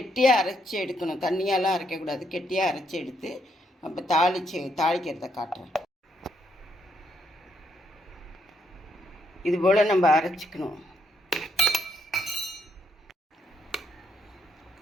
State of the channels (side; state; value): both; normal; correlation 0.75